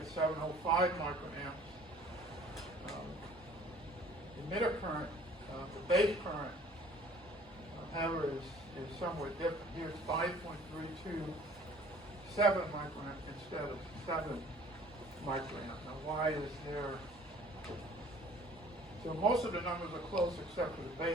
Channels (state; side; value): normal; both; correlation 0.52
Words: 705 microamps. Emitter current, the base current, however, is somewhat different. Here's 5.327 microamp instead of 7 microamp. Now, why is there? So most of the numbers are close except for the